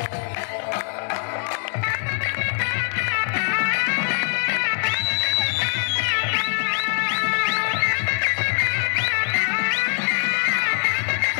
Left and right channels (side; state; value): right; silent; 62 dB below the other